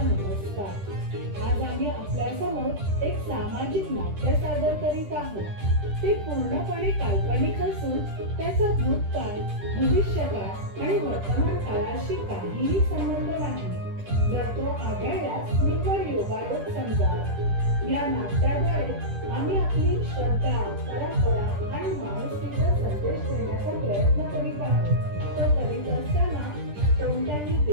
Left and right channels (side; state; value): left; late; 10 ms